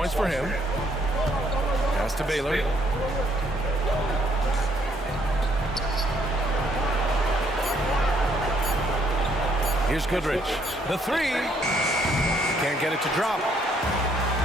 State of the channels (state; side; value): normal; both; correlation 0.68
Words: for him. Pass to Baylor. Here's Goodrich. The 3. Can't get it to drop.